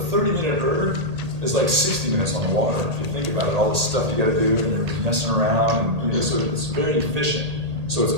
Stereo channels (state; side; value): late; left; 1.8 ms